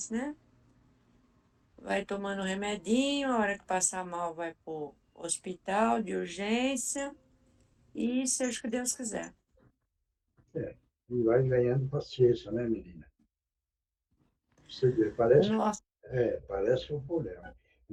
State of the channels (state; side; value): identical; both; correlation 1.00